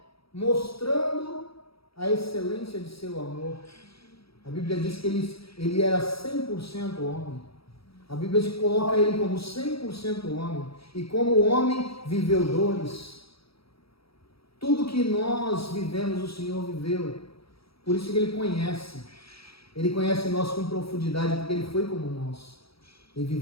mostrando a excelência de seu amor. A Bíblia diz que ele era 100% homem. A Bíblia coloca ele como 100% homem. E como homem, viveu dores. Tudo que nós vivemos, o Senhor viveu. Por isso que Ele conhece. Ele conhece nós com profundidade, porque Ele foi como nós. Ele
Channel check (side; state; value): right; late; 0.76 ms